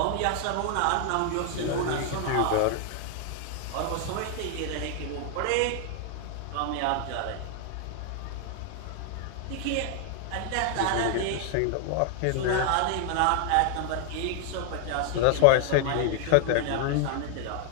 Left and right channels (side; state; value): both; different; correlation 0.00